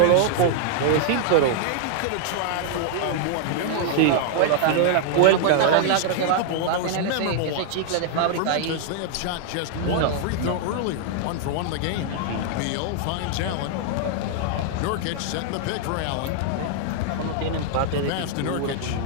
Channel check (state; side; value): different; both; correlation 0.00